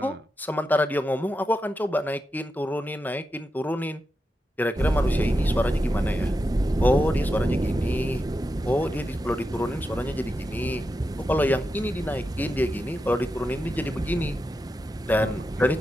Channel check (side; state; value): both; normal; correlation 0.88